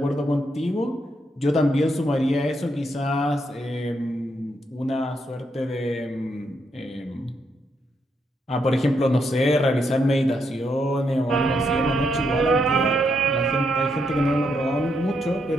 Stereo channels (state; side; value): normal; both; correlation 0.78